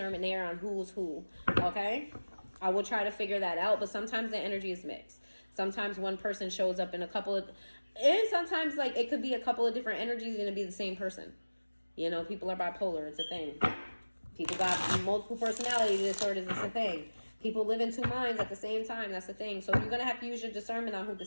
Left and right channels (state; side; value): inverted; both; correlation -1.00